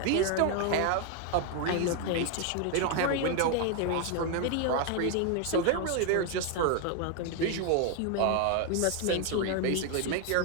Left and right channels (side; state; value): both; different; correlation 0.01